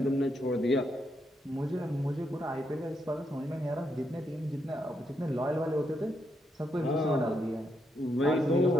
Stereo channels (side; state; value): both; normal; correlation 0.80